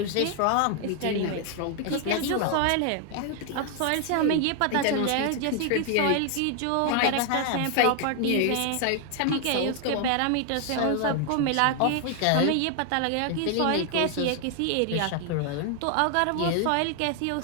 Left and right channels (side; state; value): both; different; correlation 0.00